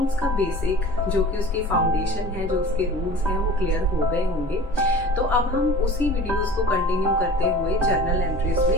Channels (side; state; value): both; normal; correlation 0.41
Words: का बेसिक जो कि उसकी फाउंडेशन है, जो उसके रूल्स हैं, वो क्लियर हो गए होंगे। तो अब हम उसी वीडियोस को कंटिन्यू करते हुए जर्नल एंट्रीज